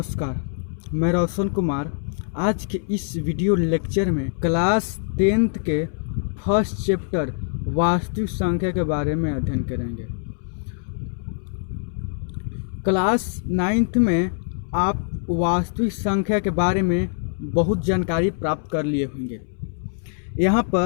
मैं रोशन कुमार आज के इस वीडियो लेक्चर में क्लास 10th के फर्स्ट चैप्टर वास्तविक संख्या के बारे में अध्ययन करेंगे। क्लास 9th में आप वास्तविक संख्या के बारे में बहुत जानकारी प्राप्त कर लिए होंगे। यहाँ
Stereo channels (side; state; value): right; silent; 63 dB below the other